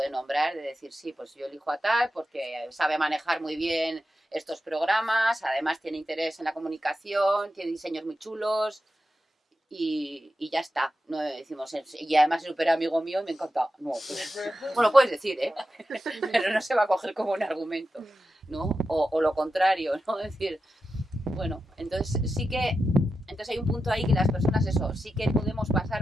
nombrar de decir, sí, pues yo elijo a tal porque sabe manejar muy bien estos programas, además tiene interés en la comunicación, tiene diseños muy chulos y ya está. No decimos, y además es súper amigo mío y me encanta. No, pues, bueno, puedes decir, ¿eh? Pero no se va a coger como un argumento, ¿no? O lo contrario, ¿no? Es decir, bueno, entonces sí que... Entonces hay un punto ahí que las personas, eso, sí que podemos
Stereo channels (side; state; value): both; normal; correlation 0.90